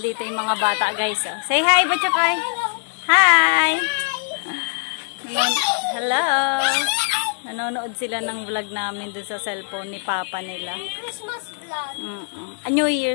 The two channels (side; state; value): right; silent; digital silence